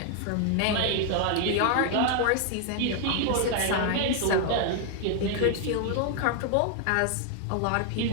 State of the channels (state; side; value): different; both; correlation 0.00